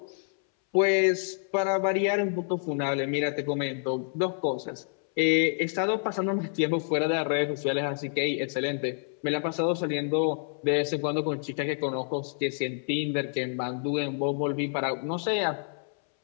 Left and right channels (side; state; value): right; silent; 59 dB below the other